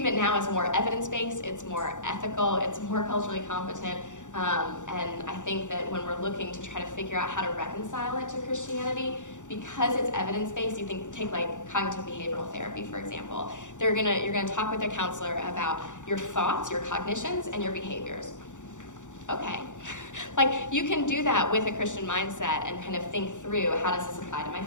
now is more evidence-based, it's more ethical, it's more culturally competent, and I think that when we're looking to try to figure out how to reconcile it to Christianity, because it's evidence-based, you take like cognitive behavioral therapy, for example. You're gonna talk with a counselor about your thoughts, your cognitions, and your behaviors. Okay. Like, you can do that with a Christian mindset and kind of think through, how does this apply to my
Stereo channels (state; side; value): late; right; 0.86 ms